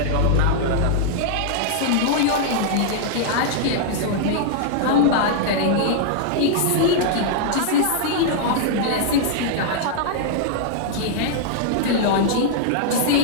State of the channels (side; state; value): both; different; correlation -0.01